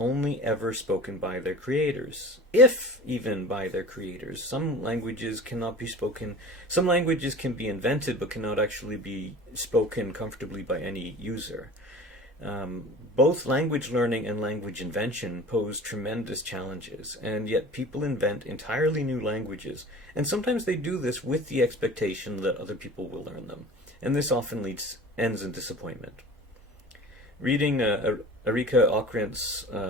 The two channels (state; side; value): normal; both; correlation 0.39